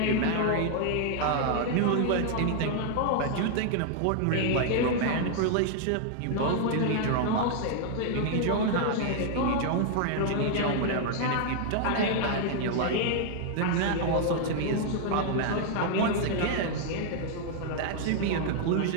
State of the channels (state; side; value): different; both; correlation 0.00